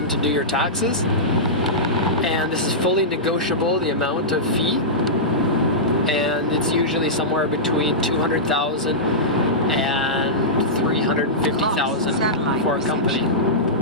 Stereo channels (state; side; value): normal; both; correlation -0.14